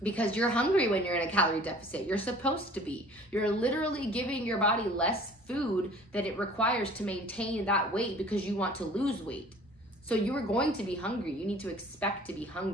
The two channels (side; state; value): both; normal; correlation 0.49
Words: Because you're hungry when you're in a calorie deficit. You're supposed to be. You're literally giving your body less food that it requires to maintain that weight because you want to lose weight. So you are going to be hungry. You need to expect to be